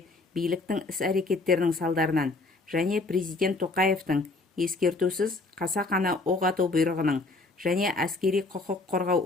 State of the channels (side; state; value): right; quieter; 3.3 dB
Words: биліктің іс-әрекеттерінің салдарынан және президент Тоқаевтың ескертусіз қасақана оқ ату бұйрығының және әскери құқық қорғау